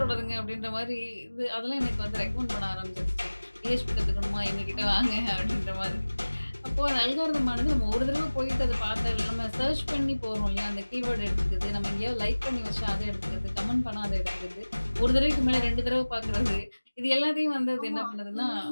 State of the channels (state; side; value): inverted; both; correlation -1.00